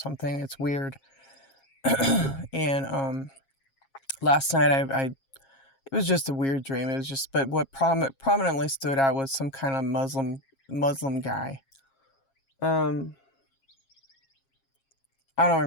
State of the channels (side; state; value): right; late; 7.4 ms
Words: It's weird. And last night I it was just a weird dream. It was just, but what prominently stood out was some kind of Muslim guy. I don't